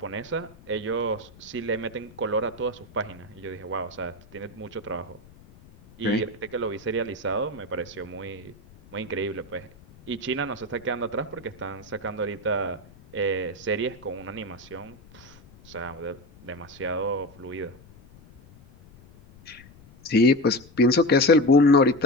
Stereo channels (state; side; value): noise; left; rumble, 23 dB below the sound